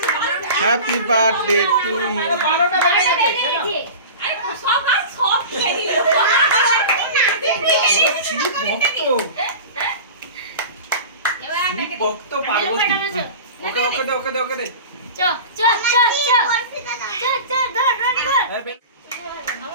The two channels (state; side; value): inverted; both; correlation -0.34